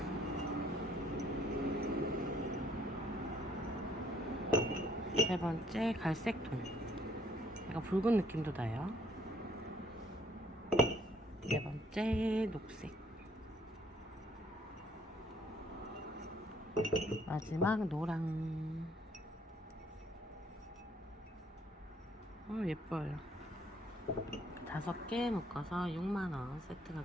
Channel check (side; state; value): both; normal; correlation 0.64